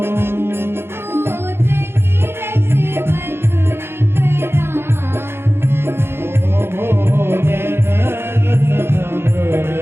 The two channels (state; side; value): late; left; 0.11 ms